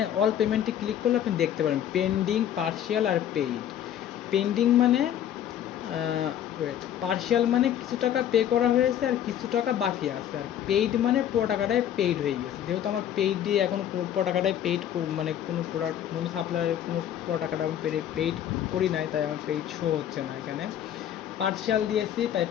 অল পেমেন্টে ক্লিক করলে আপনি দেখতে পারেন পেন্ডিং, পার্শিয়াল আর পেইড। পেন্ডিং মানে পার্শিয়াল মানে কিছু টাকা পে করা হয়েছে আর কিছু টাকা বাকি আছে, আর পেইড মানে পুরো টাকাটাই পেইড হয়ে গেছে। যেহেতু আমার পেইড দিয়ে এখন পুরো টাকাটাই পেইড, মানে কোনো প্রোডাক্ট কোনো সাপ্লায়ারের কোনো পুরো টাকাটা আমি পেইড করি নাই, তাই আমার পেইড শো হচ্ছে না এখানে। পার্শিয়াল দিয়েছি তাই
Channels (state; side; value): quieter; right; 10.4 dB